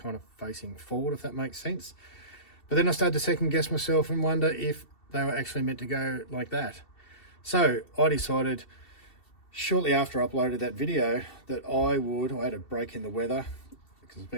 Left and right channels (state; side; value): late; right; 2.7 ms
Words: of facing forward, if that makes sense. But then I started to second guess myself and wonder if they were actually meant to go like that. So I decided shortly after I uploaded that video that I had a break in the weather because it's